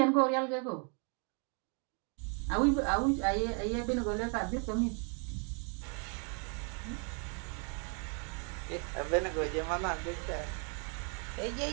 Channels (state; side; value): quieter; left; 39.0 dB